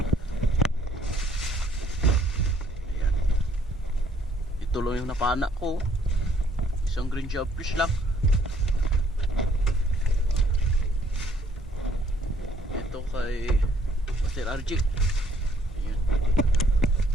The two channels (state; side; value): normal; both; correlation 0.65